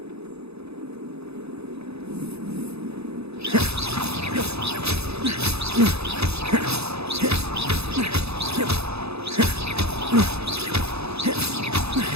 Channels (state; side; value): late; left; 0.79 ms